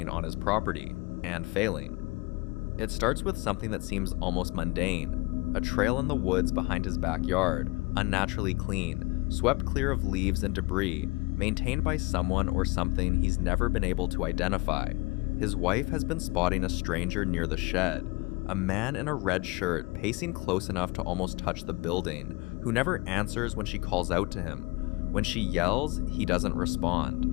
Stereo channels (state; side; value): quieter; right; 25.3 dB